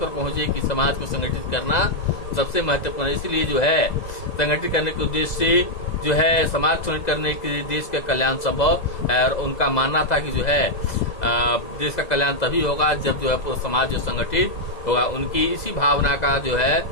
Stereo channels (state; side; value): late; right; 2.0 ms